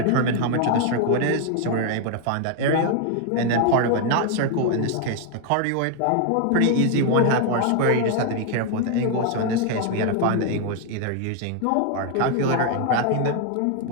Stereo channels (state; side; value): different; both; correlation 0.00